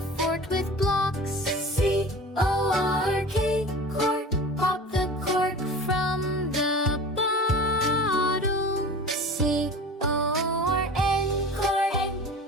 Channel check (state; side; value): normal; both; correlation 0.37